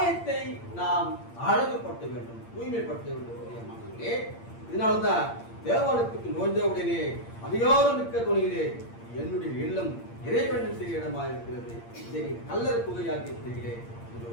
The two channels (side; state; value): right; late; 8.7 ms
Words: நாம் அழகுபடுத்த வேண்டும், தூய்மைப்படுத்த வேண்டும். இதனால்தான் தேவாலயத்துக்கு நோய்ந்த உடனே அதிகாரம் மிக்க துணியிலே என்னுடைய இல்லம் இறைவன் செய்ய இடமா இருக்கிறது, இதை கல்லர் குகையாக்கி இருக்கிறீர்களே